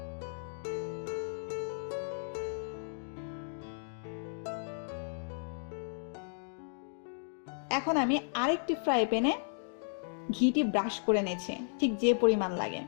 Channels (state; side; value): silent; right; digital silence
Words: এখন আমি আরেকটি ফ্রাই প্যানে ঘিটি ব্রাশ করে নিয়েছি ঠিক যে পরিমাণ লাগে।